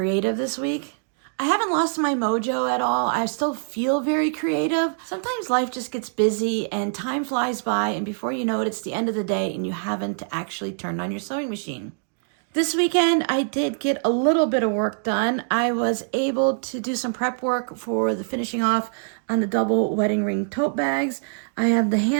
this week. I haven't lost my mojo at all. I still feel very creative. Sometimes life just gets busy and time flies by, and before you know it, it's the end of the day and you haven't actually turned on your sewing machine. This weekend, I did get a little bit of work done. I was able to do some prep work for the finishing off on the double wedding ring tote bags. I have the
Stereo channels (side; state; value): left; silent; digital silence